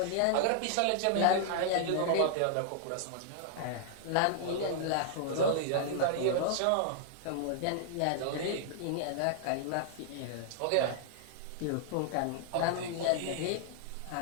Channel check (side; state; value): both; different; correlation -0.01